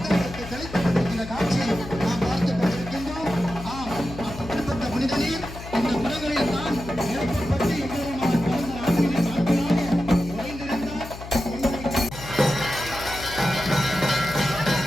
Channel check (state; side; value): noise; left; hum, 12 dB below the sound